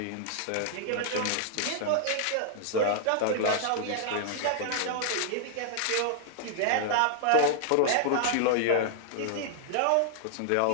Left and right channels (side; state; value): both; different; correlation -0.01